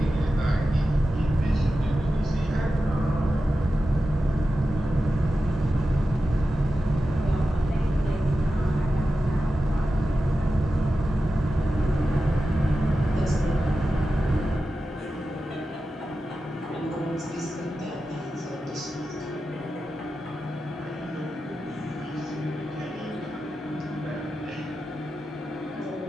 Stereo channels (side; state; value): both; normal; correlation 0.92